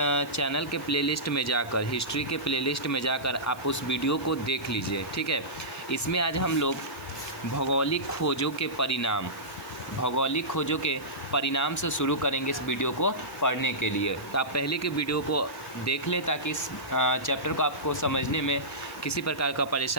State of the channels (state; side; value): noise; right; hiss, 22 dB below the sound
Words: चैनल के प्लेलिस्ट में जाकर, हिस्ट्री के प्लेलिस्ट में जाकर आप उस वीडियो को देख लीजिए, ठीक है। इसमें आज हम लोग भौगोलिक खोजों के परिणाम से शुरू करेंगे इस वीडियो को पढ़ने के लिए। तो आप पहले के वीडियो को देख लें ताकि इस चैप्टर को आपको समझने में किसी प्रकार का